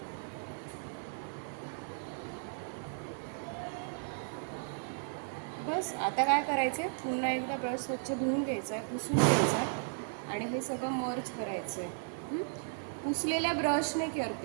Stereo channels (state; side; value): silent; left; 54 dB below the other